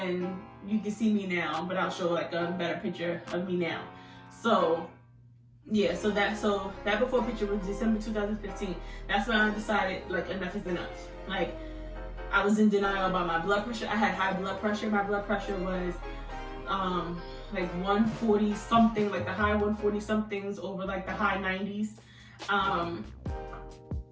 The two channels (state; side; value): identical; both; correlation 1.00